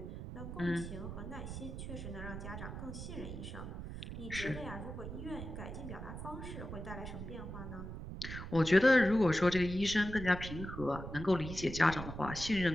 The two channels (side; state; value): right; noise; rumble, 8 dB below the sound